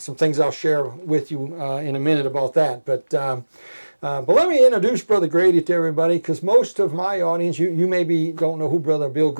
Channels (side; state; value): both; inverted; correlation -1.00